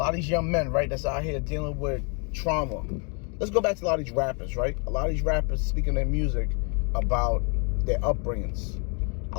of these young men, right, that's out here dealing with trauma. Let's go back to a lot of these rappers, right? A lot of these rappers speaking their music about their upbringings. I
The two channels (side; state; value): right; quieter; 36.1 dB